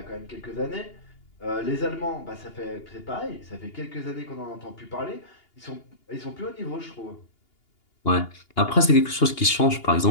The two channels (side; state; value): right; late; 2.8 ms